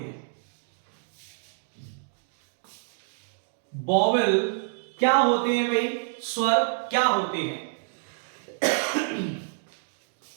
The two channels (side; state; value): left; silent; digital silence